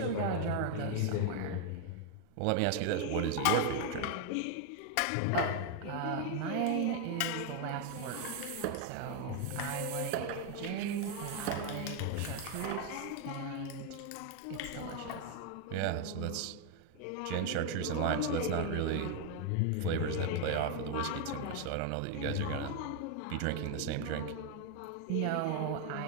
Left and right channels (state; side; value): different; both; correlation 0.01